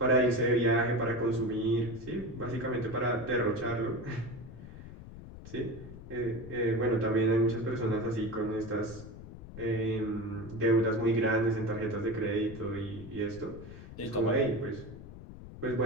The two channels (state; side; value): noise; left; rumble, 14 dB below the sound